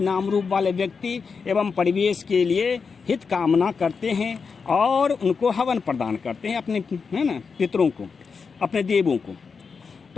नाम रूप वाले व्यक्ति एवं परिवेश के लिए हित कामना करते हैं और उनको हवन प्रदान करते हैं, अपने है ना पितरों को, अपने देवों को।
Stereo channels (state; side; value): quieter; right; 5.4 dB